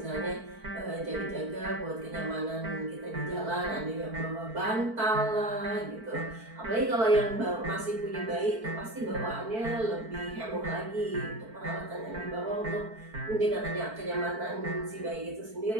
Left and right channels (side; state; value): left; late; 4.5 ms